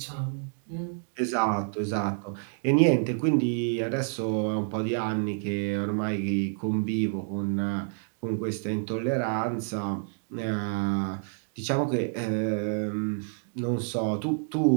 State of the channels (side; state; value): left; silent; 59 dB below the other